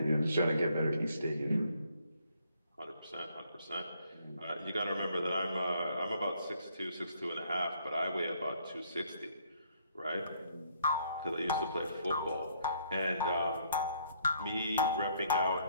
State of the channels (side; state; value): both; inverted; correlation -0.67